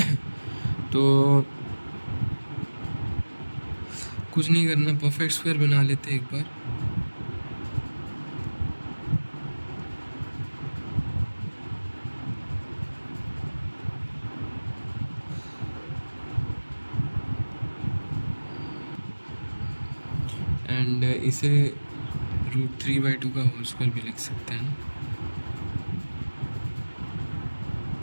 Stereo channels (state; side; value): inverted; both; correlation -1.00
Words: तो कुछ नहीं करना, परफेक्ट स्क्वायर बना लेते एक बार। एंड इसे √3/2 का होल स्क्वायर भी लिख सकते हैं।